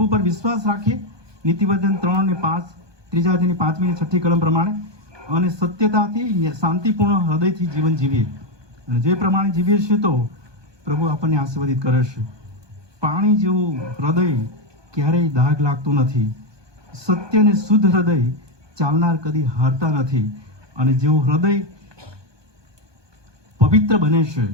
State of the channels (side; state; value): left; late; 1.2 ms